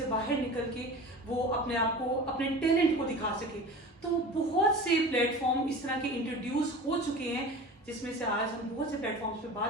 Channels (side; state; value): both; normal; correlation 0.36